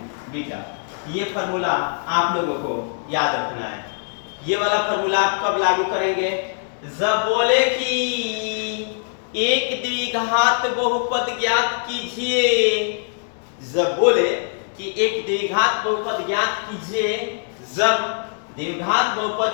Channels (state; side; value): silent; right; digital silence